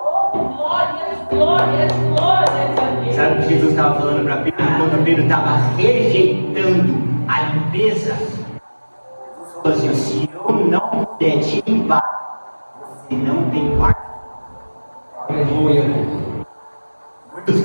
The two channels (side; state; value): both; inverted; correlation -1.00